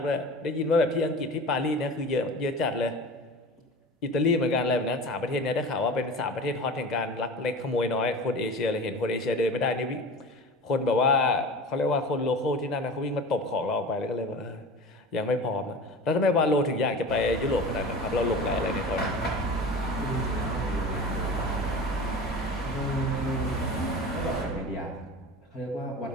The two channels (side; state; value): both; normal; correlation 0.34